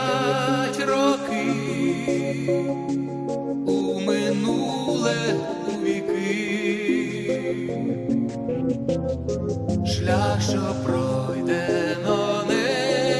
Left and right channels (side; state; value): both; identical; correlation 1.00